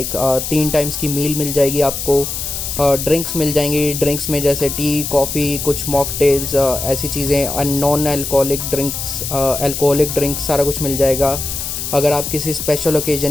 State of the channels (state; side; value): noise; left; hiss, 5 dB below the sound